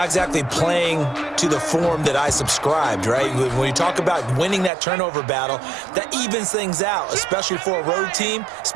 exactly playing to the form that I subscribed, right? When you talk about winning that turnover battle, that evens things out, especially for a road team,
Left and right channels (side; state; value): left; drops out; at 4.7 s